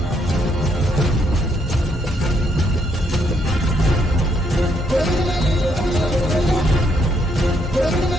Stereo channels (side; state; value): both; normal; correlation 0.73